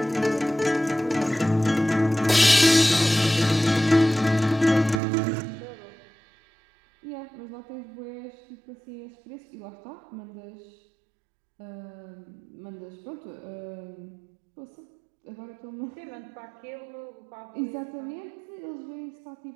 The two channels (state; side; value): drops out; left; at 5.0 s